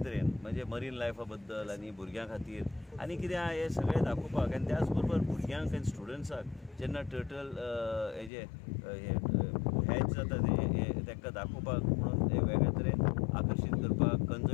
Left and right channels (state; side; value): drops out; right; at 8.3 s